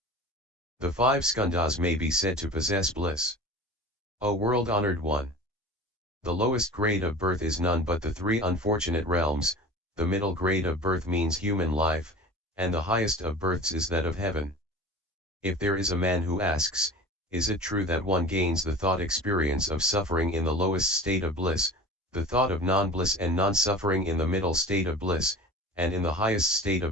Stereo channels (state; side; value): normal; both; correlation 0.37